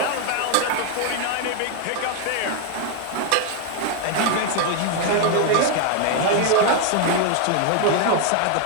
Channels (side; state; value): both; different; correlation 0.01